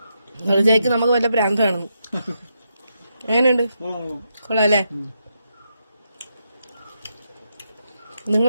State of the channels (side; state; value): both; inverted; correlation -0.82